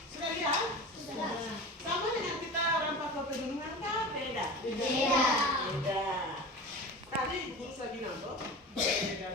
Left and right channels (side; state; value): both; normal; correlation 0.33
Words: Sudah lihat? Sudah. Sama dengan kita orang Papua Pegunungan kan beda. Tadi Ibu lagi nambah